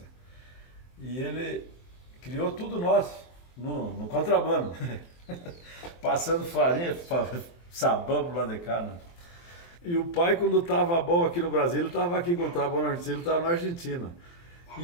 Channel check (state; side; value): late; right; 23 ms